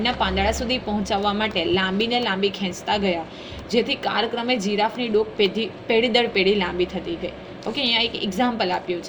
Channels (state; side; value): identical; both; correlation 1.00